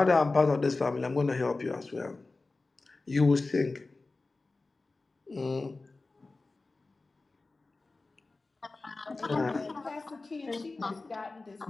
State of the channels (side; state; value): right; quieter; 3.5 dB